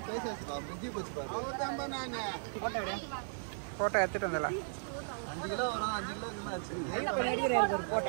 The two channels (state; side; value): silent; left; digital silence